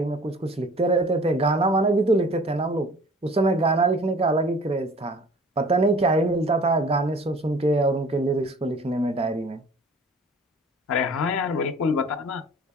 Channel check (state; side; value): normal; both; correlation 0.48